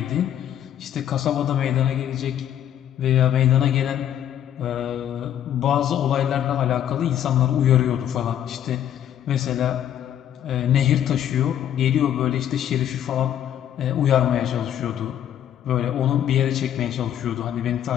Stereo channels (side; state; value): right; quieter; 10.4 dB